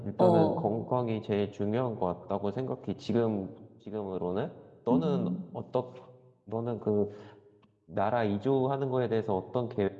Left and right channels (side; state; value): both; identical; correlation 1.00